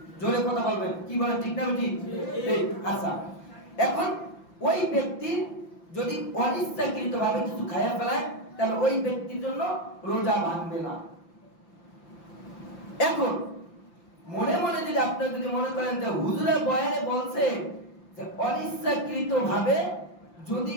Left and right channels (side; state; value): right; late; 5.8 ms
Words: জোরে কথা বলবেন, কি বলেন ঠিক না ঠিক? আচ্ছা, এখন ওই ব্যক্তি যদি অনিচ্ছাকৃতভাবে কিছু খাইয়া ফেলায় তাহলে ওই ব্যক্তির জন্য রোজা ভাঙবে না। এখন মনে মনে যদি আপনি যদি মনে করেন যে হুজুরের বয়ানে বলছে যে অনিচ্ছাকৃতভাবে যদি